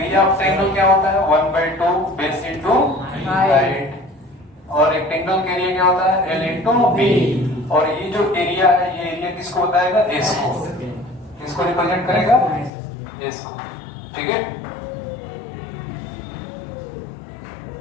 ऑफ ट्रायंगल क्या होता है? 1/2 बेस इंटू हाइट, और रेक्टेंगल का एरिया क्या होता है? L into B। और ये जो एरिया है, ये एरिया किसको बताएगा? S को। किसको रिप्रेजेंट करेगा? S को, ठीक है।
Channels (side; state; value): right; drops out; at 12.7 s